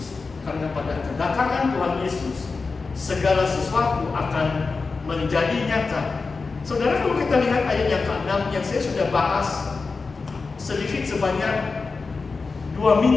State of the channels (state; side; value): quieter; right; 4.3 dB